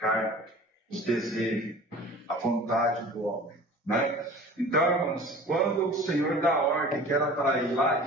os desejos, a vontade do homem. Né? Então, irmãos, quando o Senhor dá ordem que era para ir lá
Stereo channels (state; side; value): normal; both; correlation 0.42